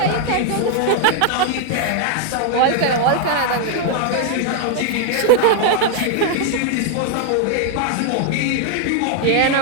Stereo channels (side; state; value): both; different; correlation 0.00